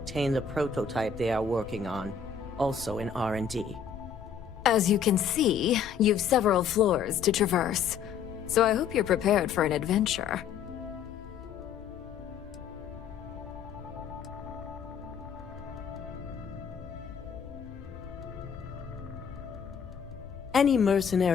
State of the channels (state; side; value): quieter; right; 7.1 dB